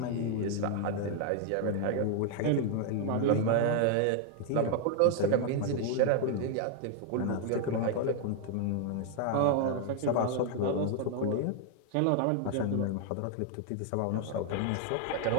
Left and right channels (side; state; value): both; different; correlation 0.00